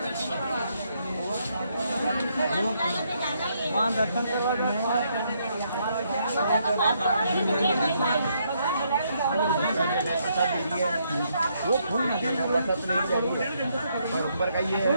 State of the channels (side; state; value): both; inverted; correlation -0.74